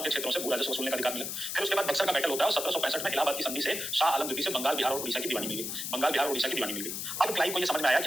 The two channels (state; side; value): noise; left; hiss, 4 dB below the sound